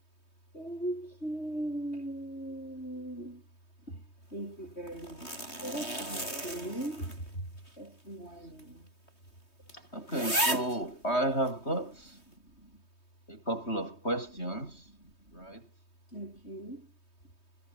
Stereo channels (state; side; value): late; right; 3.2 ms